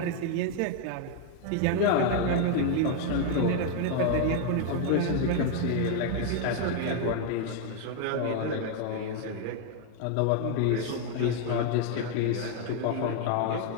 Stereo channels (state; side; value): different; both; correlation 0.00